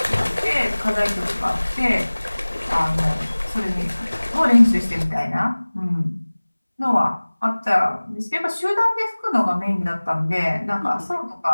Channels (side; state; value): both; inverted; correlation -1.00